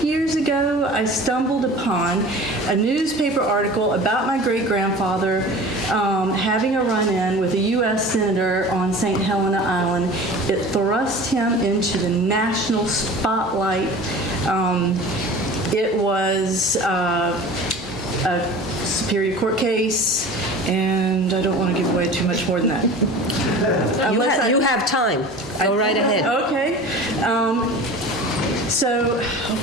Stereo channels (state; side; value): normal; both; correlation 0.39